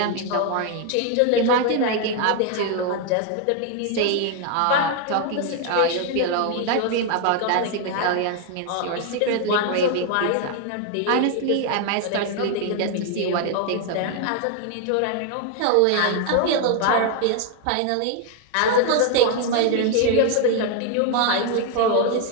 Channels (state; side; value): different; both; correlation 0.00